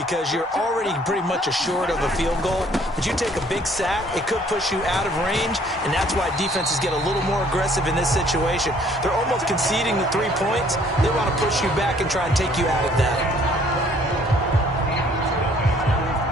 you're already pretty much assured of a field goal. But you take a big sack, it could push you out of range, and that's why defenses get a little more aggressive in this situation. They're almost conceding the 3 points. They want to push you back and try and take you out of that.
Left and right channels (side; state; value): both; normal; correlation 0.60